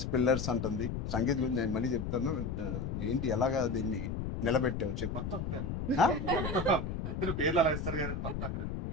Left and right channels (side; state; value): left; noise; rumble, 3 dB below the sound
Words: pillars అంటుంది. సంగీత్ గురించి నేను మళ్ళీ చెప్తాను. ఏంటి ఎలాగా దీన్ని నిలబెట్టావు చెప్పు. పేర్లు అలా ఇస్తారు కానీ